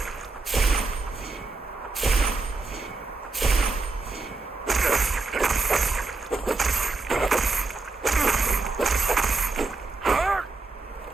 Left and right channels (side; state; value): left; quieter; 3.8 dB